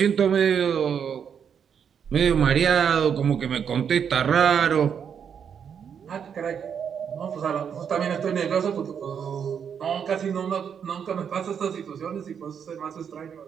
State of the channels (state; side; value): quieter; left; 7.6 dB